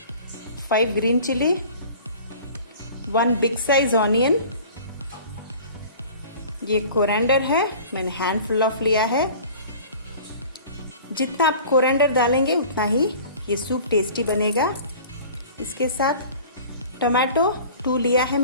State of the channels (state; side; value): inverted; both; correlation -0.44